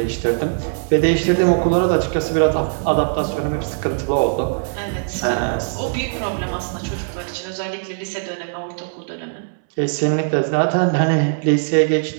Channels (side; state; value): left; silent; 66 dB below the other